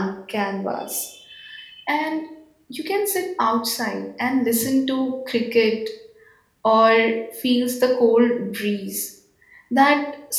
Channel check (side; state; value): both; identical; correlation 1.00